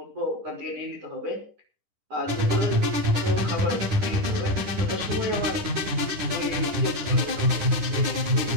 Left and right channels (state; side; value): late; left; 10 ms